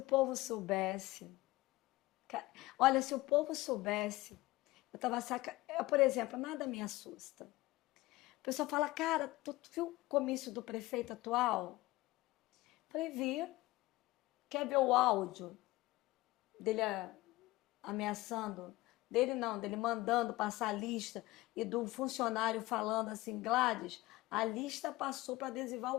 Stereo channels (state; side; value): quieter; right; 19.3 dB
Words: povo soubesse. Olha, se o povo soubesse. Eu tava por exemplo, nada me assusta. O pessoal fala, cara, tu viu o comício do prefeito atual? Falei, vi. Quer ver o áudio dele ameaçando? Dele não, dele mandando passar a lista e do funcionário falando assim, Gladys, a lista passou para adesivar